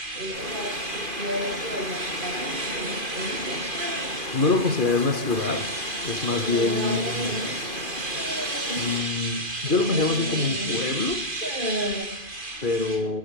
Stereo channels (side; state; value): left; late; 2.5 ms